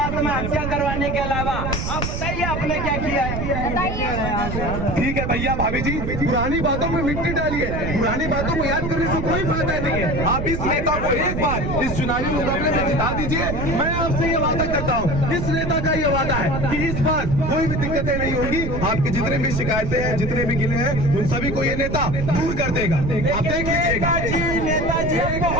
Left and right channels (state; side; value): noise; right; rumble, 3 dB below the sound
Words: करवाने के अलावा आप बताइए आपने क्या किया है? बताइए। ठीक है भैया भाभी जी पुरानी बातों में मिट्टी डालिए, पुरानी बातों को याद करने से कोई फायदा नहीं है। आप इस नेता को एक बार इस चुनावी मुकाबले में जिता दीजिए। मैं आपसे ये वादा करता हूँ, इस नेता का ये वादा है कि इस बार कोई भी दिक्कतें नहीं होंगी। आपकी जितने भी शिकायतें हैं, जितने भी गिले हैं, उन सभी को ये नेता दूर कर देगा। आप देख लीजिएगा। नेताजी